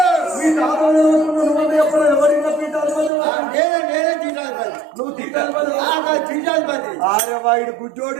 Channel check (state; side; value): drops out; left; at 3.1 s